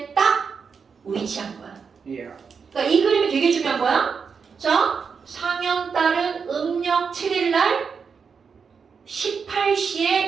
딱 위치한 거야. 그러니까 이 그림이 되게 중요한 거야. 자, 상현달은 음력 7일날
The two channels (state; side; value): quieter; left; 5.9 dB